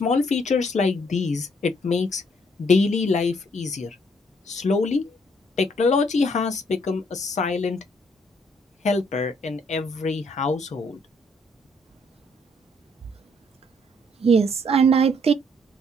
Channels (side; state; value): both; normal; correlation 0.68